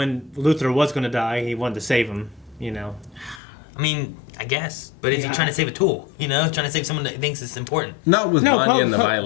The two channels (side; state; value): right; drops out; at 3.4 s